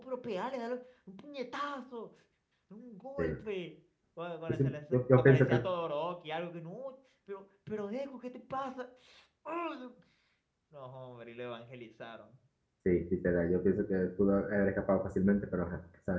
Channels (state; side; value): identical; both; correlation 1.00